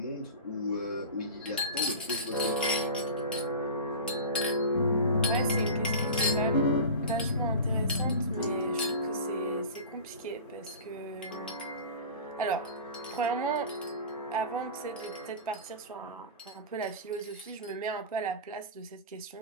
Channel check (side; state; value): both; inverted; correlation -0.32